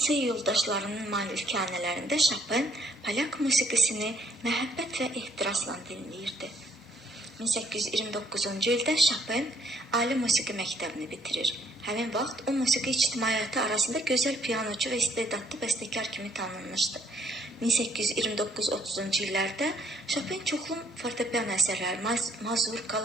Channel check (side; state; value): both; normal; correlation 0.67